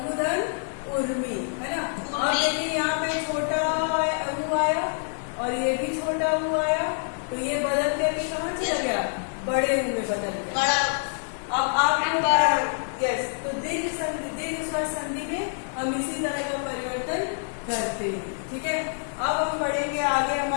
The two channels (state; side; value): silent; right; digital silence